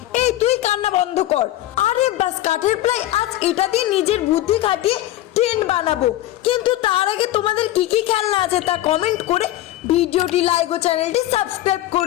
এই তুই কান্না বন্ধ কর। আরে বাস, কাঠের প্লাই আজ এটা দিয়ে নিজের বুদ্ধি খাটিয়ে ট্রেন বানাবো। কিন্তু তার আগে তোমাদের কি কি খেলনা আছে তা কমেন্ট করে ভিডিওটি লাইক ও চ্যানেলটি সাবস্ক্রাইব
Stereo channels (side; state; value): right; quieter; 14.6 dB